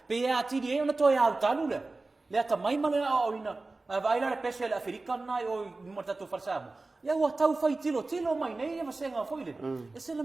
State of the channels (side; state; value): left; quieter; 3.4 dB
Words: Pe a ti die ona to ya utalu le. Le ata mai male o ina. Vai la le pese le African nai o mata tu farsamo. Ia ua tau fai tilo mai nei e senga foi le. E se le